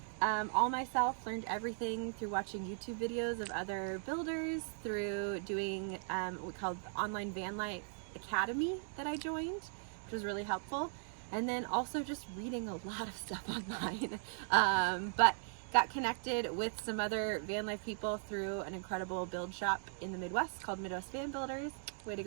all myself, learned everything through watching YouTube videos of other builders, through doing what we called the online van life academy that I joined, which was really helpful. And then also just reading a lot of stuff online. But got connected with some other van life people through an incredible build shop in the Midwest called Midwest Van Builders. Way to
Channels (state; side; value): silent; left; digital silence